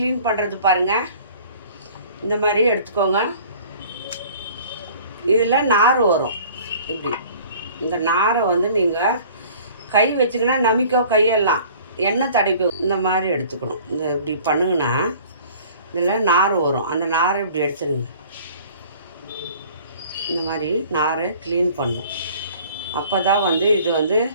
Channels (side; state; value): both; inverted; correlation -0.49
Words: பண்ணுறது பாருங்கள். இந்த மாதிரி எடுத்துக்கோங்க. இதில் நார் வரும். இப்படி இந்த நாரை வந்து நீங்கள் கை வச்சிங்கன்னா நமிக்கோ, கையெல்லாம் எண்ணெய் தடைக்கோ. இந்த மாதிரி எடுத்துக்கணும். இந்த இப்படி பண்ணுங்கன்னா இதில் நார் வரும். அந்த நாரை இப்படி எடுத்துடுங்க. இந்த மாதிரி நாரை க்ளீன் பண்ணும். அப்போ தான் வந்து இது வந்து